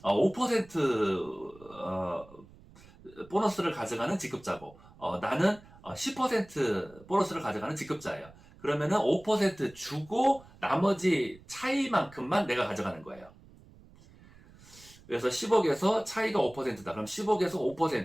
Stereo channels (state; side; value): noise; right; rumble, 23 dB below the sound